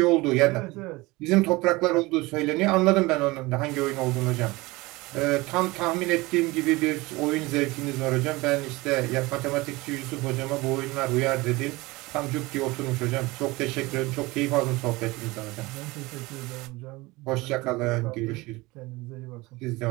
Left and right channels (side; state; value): left; quieter; 22.0 dB